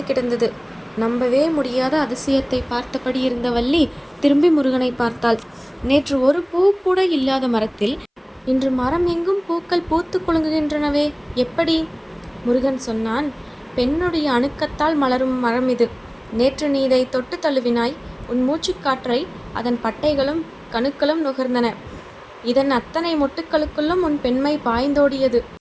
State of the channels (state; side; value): identical; both; correlation 1.00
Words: கிடந்தது. நம்பவே முடியாத அதிசயத்தை பார்த்தபடி இருந்த வள்ளி திரும்பி முருகனை பார்த்தாள். நேற்று ஒரு பூ கூட இல்லாத மரத்தில் இன்று மரம் எங்கும் பூக்கள் பூத்து குலுங்குகின்றனவே, எப்படி? முருகன் சொன்னான். பெண்ணுடைய அணுக்கத்தால் மலரும் மரம் இது. நேற்று நீ இதை தொட்டு தழுவினாய். உன் மூச்சுக்காற்றை அதன் பட்டைகளும் கணுக்களும் நுகர்ந்தன. இதன் அத்தனை மொட்டுக்களுக்குள்ளும் உன் பெண்மை பாய்ந்தோடியது.